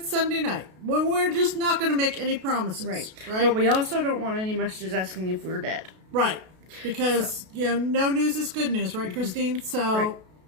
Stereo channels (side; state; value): left; late; 32 ms